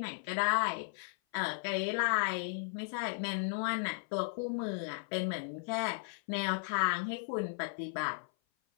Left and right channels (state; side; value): silent; right; 54 dB below the other